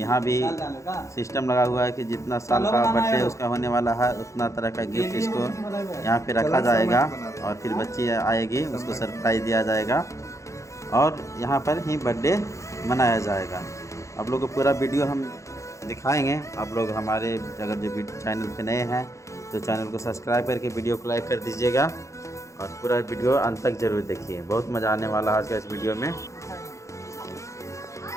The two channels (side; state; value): right; late; 0.15 ms